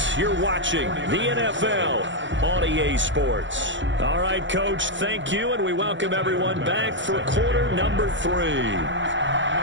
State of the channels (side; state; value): left; late; 0.54 ms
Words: You're watching the NFL on EA Sports. All right, Coach, thank you, and we welcome everyone back for quarter number 3.